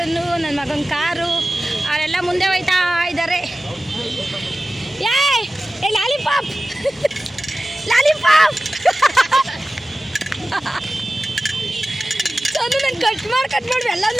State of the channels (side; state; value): both; normal; correlation 0.96